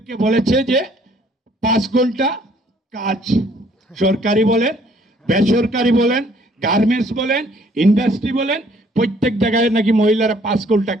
বলেছে যে 5 ঘন্টা কাজ, সরকারি বলেন, বেসরকারি বলেন, গার্মেন্টস বলেন, ইন্ডাস্ট্রি বলেন, প্রত্যেক জায়গায় নাকি মহিলারা 5 ঘন্টা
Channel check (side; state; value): both; normal; correlation 0.61